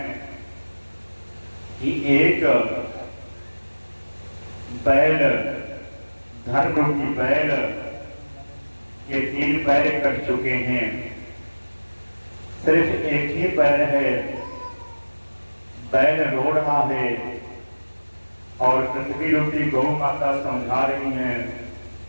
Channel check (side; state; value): both; inverted; correlation -1.00